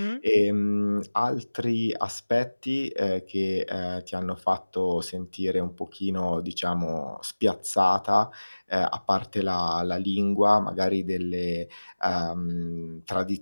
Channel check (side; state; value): both; inverted; correlation -1.00